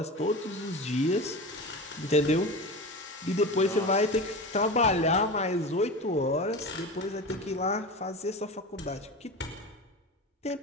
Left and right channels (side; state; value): both; normal; correlation 0.28